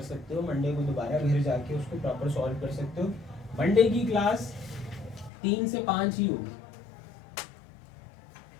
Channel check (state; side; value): drops out; right; at 5.3 s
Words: सकते हो, मंडे को दोबारा घर जाके उसको प्रॉपर सॉल्व कर सकते हो। मंडे की क्लास 3 से 5 ही होगी,